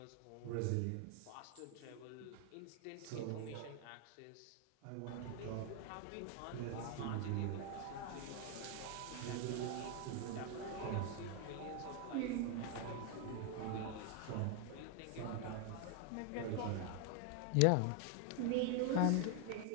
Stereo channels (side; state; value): both; different; correlation 0.00